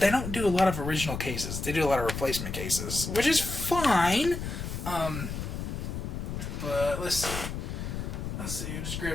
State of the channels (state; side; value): noise; left; rumble, 5 dB below the sound